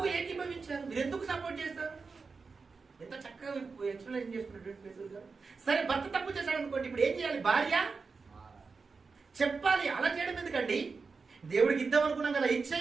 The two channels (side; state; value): left; quieter; 4.6 dB